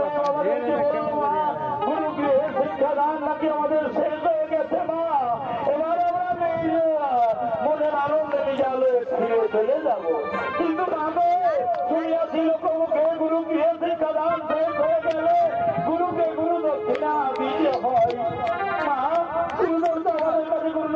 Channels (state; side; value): identical; both; correlation 1.00